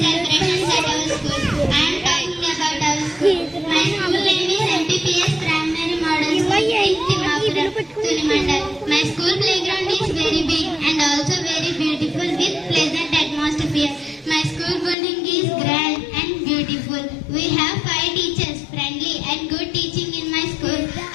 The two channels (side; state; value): right; drops out; at 15.0 s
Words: at our school. I am talking about our school. My school name is M.p.p.S. Primary Model School, t.thimmapuram, Tulimandal. My school playground is very big and also very beautiful with pleasant atmosphere. My school building is grand and beautiful. We have 5 teachers, friendly and good teaching in my school.